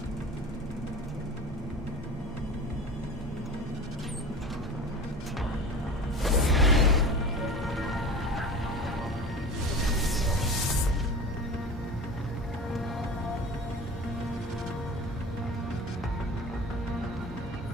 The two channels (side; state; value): both; normal; correlation 0.35